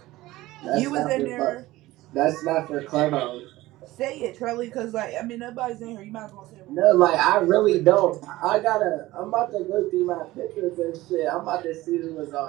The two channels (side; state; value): left; quieter; 17.8 dB